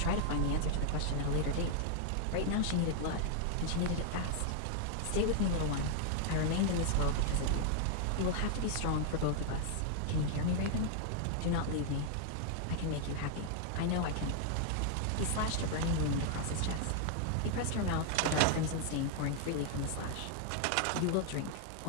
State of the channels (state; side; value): different; both; correlation 0.00